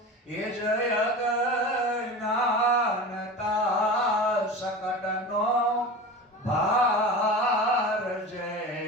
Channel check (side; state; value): both; normal; correlation 0.31